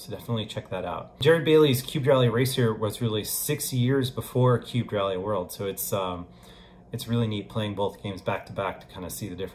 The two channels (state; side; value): identical; both; correlation 1.00